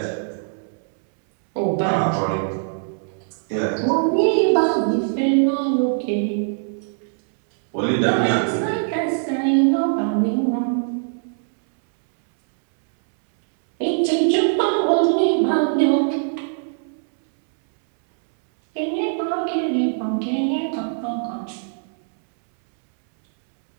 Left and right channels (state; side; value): silent; left; 65 dB below the other